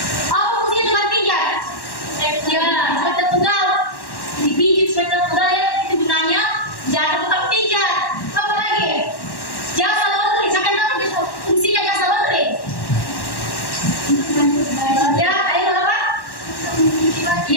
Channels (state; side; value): late; right; 1.1 ms